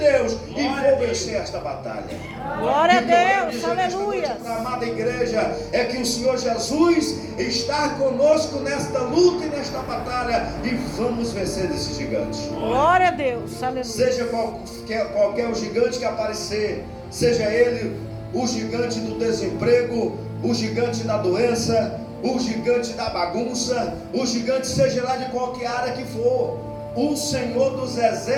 e vou vencer esta batalha. Glória a Deus, aleluia. Para a amada igreja, é que o Senhor Jesus está conosco nesta luta e nesta batalha, e vamos vencer esse gigante. Glória a Deus, aleluia. Seja qualquer o gigante que aparecer, seja ele o gigante do desemprego, o gigante da doença, o gigante da bagunça, o gigante seja lá de qualquer área que for, o Senhor dos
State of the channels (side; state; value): both; identical; correlation 1.00